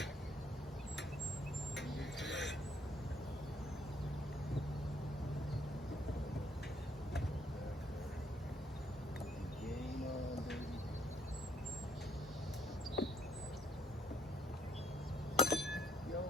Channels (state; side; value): normal; both; correlation 0.68